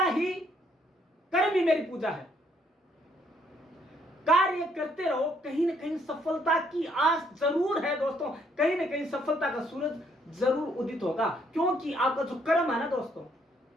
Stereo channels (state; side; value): normal; both; correlation 0.68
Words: ही, कर्म ही मेरी पूजा है। कार्य करते रहो, कहीं ना कहीं सफलता की आस जरूर है दोस्तों, कहीं ना कहीं सफलता का सूरज जरूर उदित होगा। क्योंकि आपका जो कर्म है ना दोस्तों,